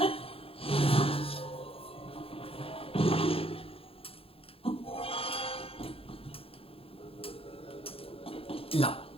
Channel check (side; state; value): right; late; 0.27 ms